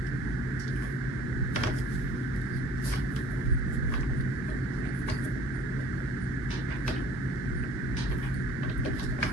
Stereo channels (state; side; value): normal; both; correlation 0.52